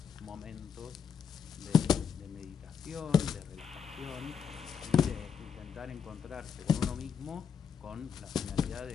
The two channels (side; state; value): right; quieter; 7.0 dB